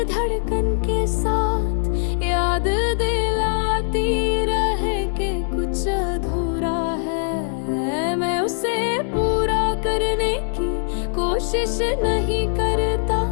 धड़कन के साथ याद दिलाती रहे कि कुछ अधूरा है। मैं उसे पूरा करने की कोशिश नहीं करता,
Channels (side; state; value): right; silent; 64 dB below the other